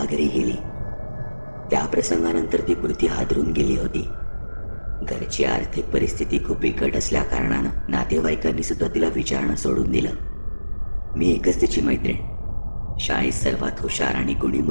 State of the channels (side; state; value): both; inverted; correlation -1.00